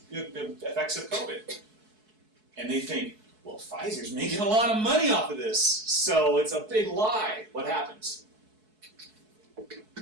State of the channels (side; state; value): left; late; 4.7 ms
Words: effects of COVID? And they think, well, Pfizer's making a lot of money off of this, so it's a big lie. What happens?